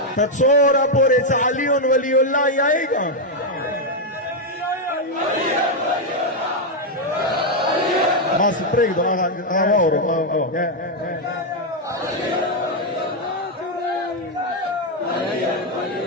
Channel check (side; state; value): both; normal; correlation 0.01